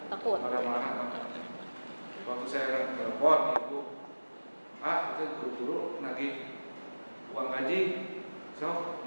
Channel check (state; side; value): inverted; both; correlation -1.00